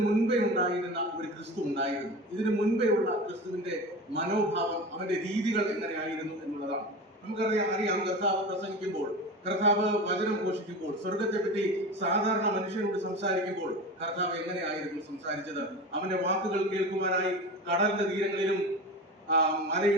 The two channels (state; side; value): normal; both; correlation 0.30